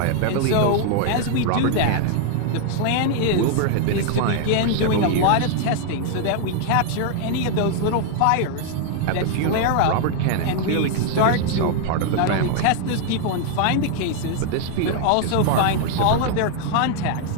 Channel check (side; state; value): both; different; correlation 0.00